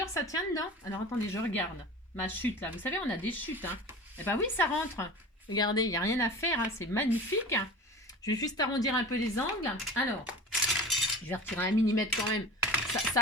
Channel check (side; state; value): both; normal; correlation 0.36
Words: ça tient dedans. Alors, attendez, je regarde. Ma chute, là. Vous savez, on a des chutes, hein. Eh ben oui, ça rentre. Regardez, il n'y a rien à faire, hein. C'est magnifique. Je vais juste arrondir un peu les angles. Alors... je vais retirer 1 mm quand même.